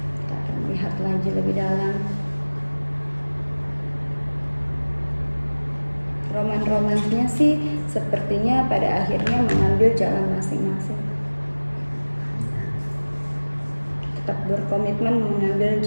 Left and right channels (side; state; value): both; inverted; correlation -1.00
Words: Kita akan melihat lagi lebih dalam. Roman-romansnya sih sepertinya pada akhirnya mengambil jalan masing-masing. Tetap berkomitmen mengambil